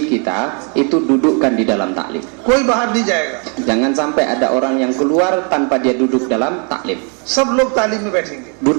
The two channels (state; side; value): quieter; left; 37.5 dB